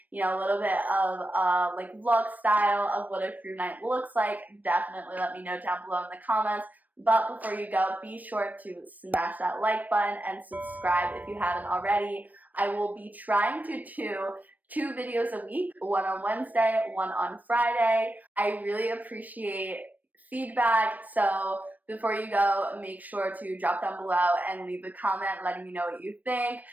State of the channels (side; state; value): left; late; 0.081 ms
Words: you know, a little bit of like vlog style of what a crew night looks like, definitely let me know down below in the comments. But before you go, be sure to smash that like button and subscribe if you haven't already. I will be trying to do 2 videos a week, one on Wednesday, one on Friday. I really appreciate feedback, so before you go, make sure to drop down below and leave a comment letting me know what you think.